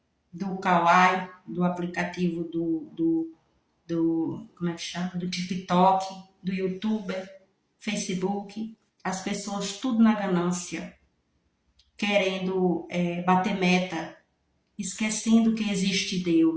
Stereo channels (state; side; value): identical; both; correlation 1.00